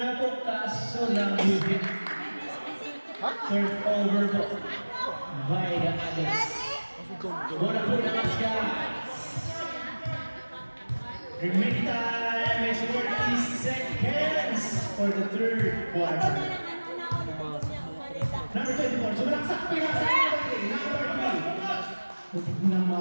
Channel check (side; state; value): both; inverted; correlation -1.00